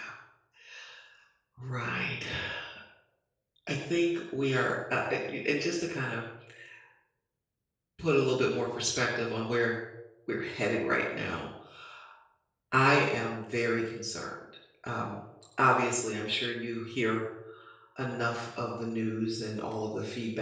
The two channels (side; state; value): both; identical; correlation 1.00